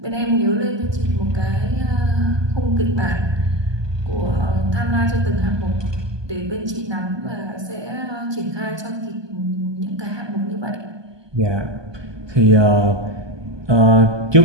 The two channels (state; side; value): late; left; 1.2 ms